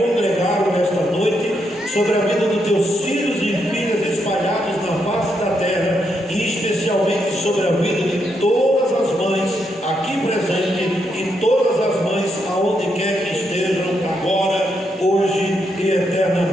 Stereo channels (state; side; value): normal; both; correlation 0.79